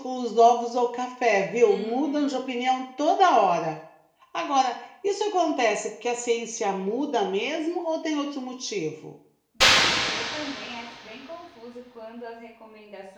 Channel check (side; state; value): both; identical; correlation 1.00